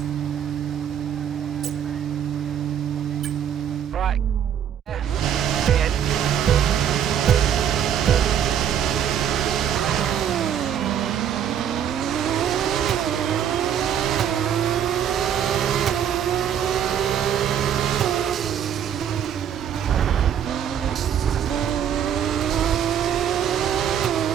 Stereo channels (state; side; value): quieter; left; 9.1 dB